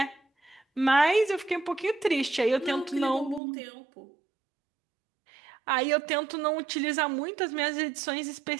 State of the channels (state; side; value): drops out; left; at 3.4 s